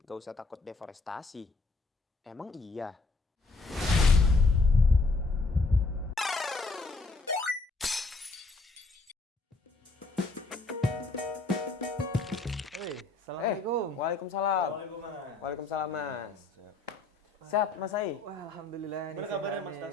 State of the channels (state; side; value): quieter; right; 3.5 dB